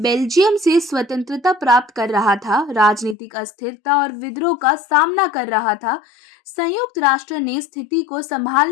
से स्वतंत्रता प्राप्त कर रहा था, राजनीतिक अस्थिरता और विद्रोह का सामना कर रहा था। संयुक्त राष्ट्र ने स्थिति को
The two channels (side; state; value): right; drops out; at 3.2 s